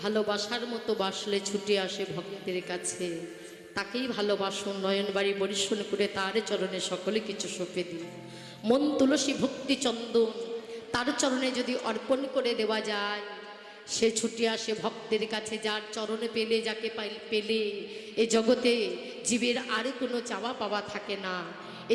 ভালোবাসার মতো বাসলে ছুটে আসে ভক্তের কাছে, তাকেই ভালোবাসুন, নয়নবাড়ি বরিশন করে তার চরণে সকলে কিছু সঁপে দিন। মন তুলসী ভক্তি চন্দন তার চরণে যদি অর্পণ করে দেওয়া যায়, সে ছুটে আসে ভক্তের কাছে। যার চরণে পেলে, যাকে পেলে এ জগতে জীবের আর কোনো চাওয়া পাওয়া থাকে না।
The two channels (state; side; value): identical; both; correlation 1.00